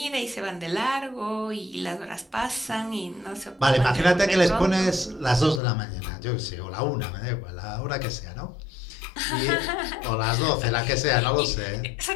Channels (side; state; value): right; drops out; at 5.6 s